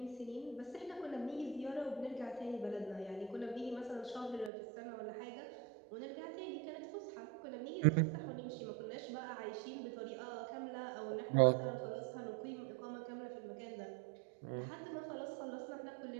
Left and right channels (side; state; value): left; drops out; at 4.5 s